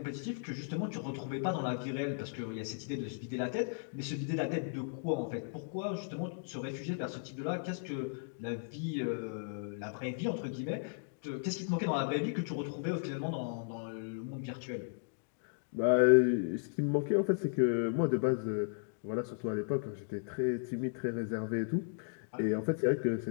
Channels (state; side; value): silent; right; digital silence